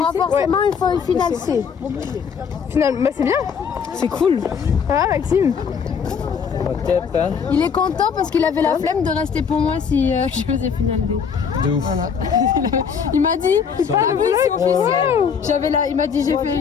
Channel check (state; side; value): quieter; right; 6.6 dB